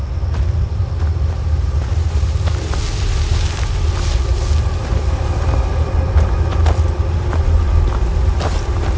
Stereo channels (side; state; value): both; identical; correlation 1.00